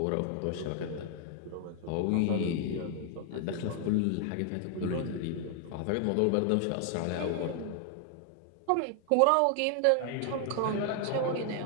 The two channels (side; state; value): both; different; correlation 0.00